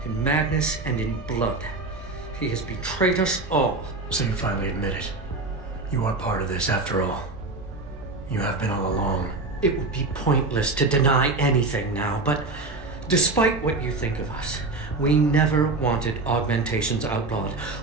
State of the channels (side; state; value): left; quieter; 3.4 dB